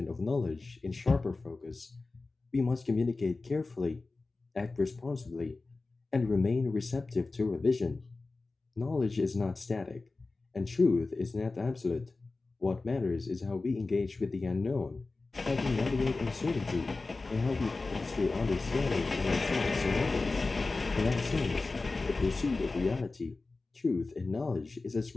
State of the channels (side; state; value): right; quieter; 3.6 dB